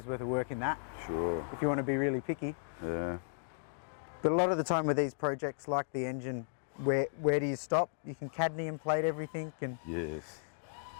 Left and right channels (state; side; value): silent; right; digital silence